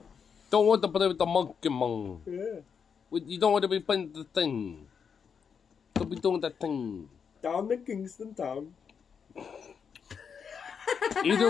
Don't want to play with the monkey, man. Yeah. You don't want to be playing the thing. Don't be doing that thing. Down in Kingston Town.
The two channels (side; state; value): right; quieter; 6.6 dB